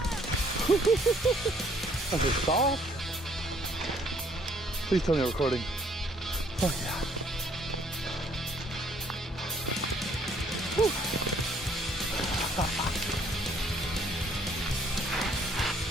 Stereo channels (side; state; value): both; normal; correlation 0.64